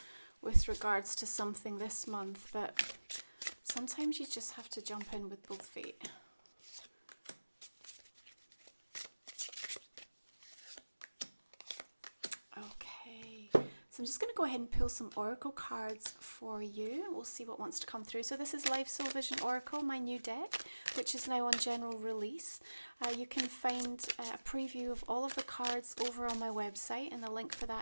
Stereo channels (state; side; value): inverted; both; correlation -1.00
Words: with regards to something this month, but sometimes you just have to jump in with both feet. Okay, so I'm just going to go ahead and pull some oracle cards for you. We'll see what wants to come through. So this is Life Soul Vision Oracle, my new deck, which is now on general release. You can find a preview of all of the cards over on my website, and the link for